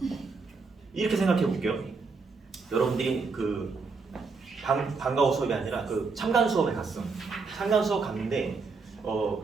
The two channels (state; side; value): quieter; left; 4.5 dB